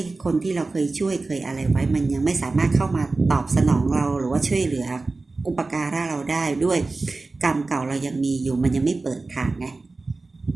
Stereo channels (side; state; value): left; quieter; 3.5 dB